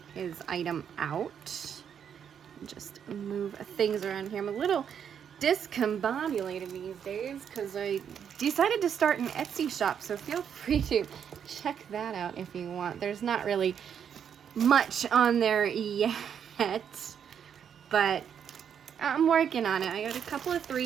item out. Just move things around here. I'm a little discombobulated these days because I decided to start an Etsy shop, so feel free to check that out if you want. There's not really much on there yet, but I'm working on it. I got a couple of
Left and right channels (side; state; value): left; quieter; 8.1 dB